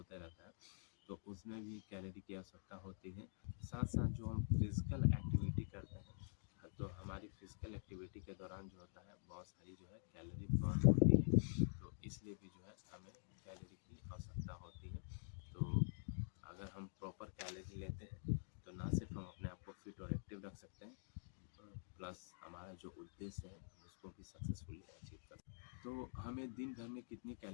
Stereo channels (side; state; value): right; silent; digital silence